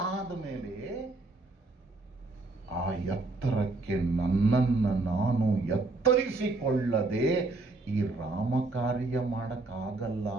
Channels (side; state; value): left; quieter; 3.4 dB